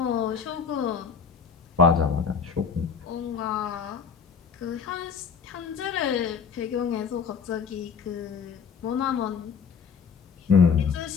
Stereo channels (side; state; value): right; quieter; 6.2 dB